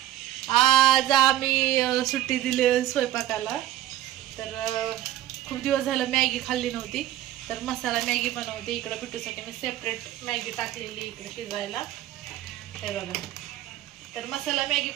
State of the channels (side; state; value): left; quieter; 13.5 dB